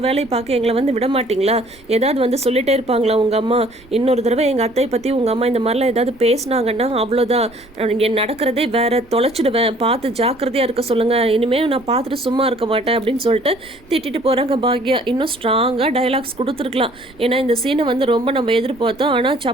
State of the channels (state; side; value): noise; right; rumble, 26 dB below the sound